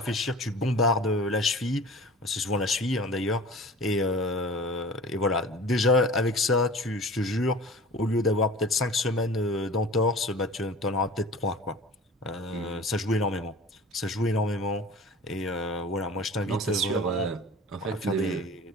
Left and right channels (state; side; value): normal; both; correlation 0.40